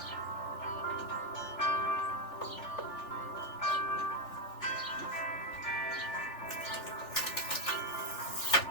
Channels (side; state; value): right; late; 3.4 ms